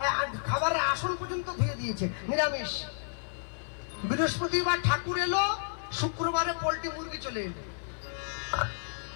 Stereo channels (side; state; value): right; silent; 57 dB below the other